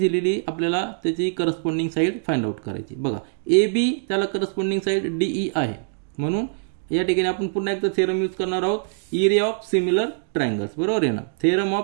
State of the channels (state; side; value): silent; left; digital silence